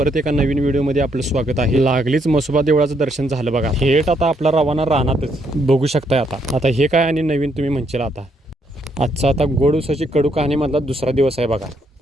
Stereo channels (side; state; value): both; normal; correlation 0.73